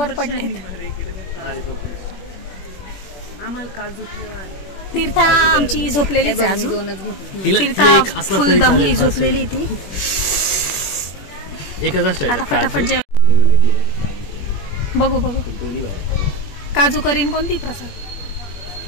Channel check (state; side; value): late; right; 21 ms